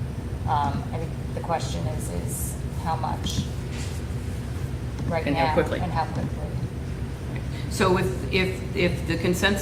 I think the question is how much right And now. how quickly. And how quickly. So if the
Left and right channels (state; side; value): identical; both; correlation 1.00